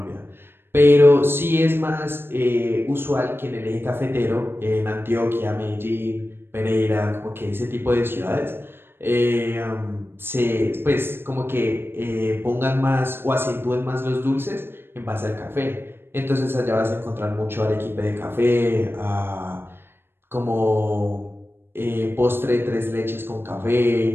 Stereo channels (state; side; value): late; left; 0.11 ms